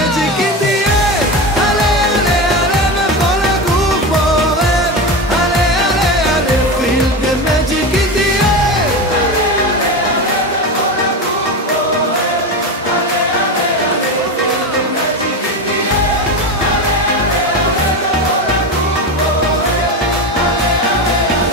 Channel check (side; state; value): both; normal; correlation 0.20